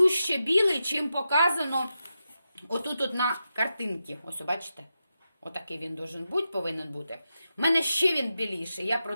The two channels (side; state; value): both; inverted; correlation -0.89